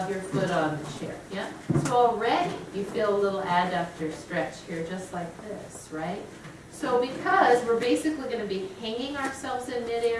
your foot on the chair, yeah? So already you feel a little adductor stretch here, just like this, right? So because we're basically going to be hanging ourselves in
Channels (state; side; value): identical; both; correlation 1.00